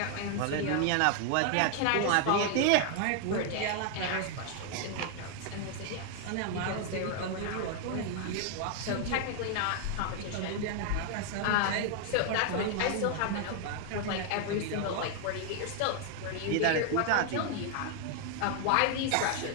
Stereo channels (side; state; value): both; different; correlation 0.00